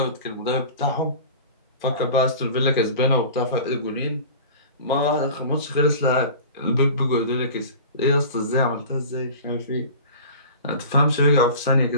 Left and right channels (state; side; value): inverted; both; correlation -0.38